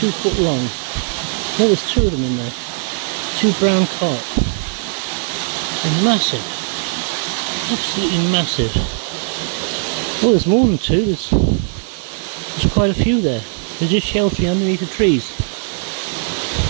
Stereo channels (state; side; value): silent; left; digital silence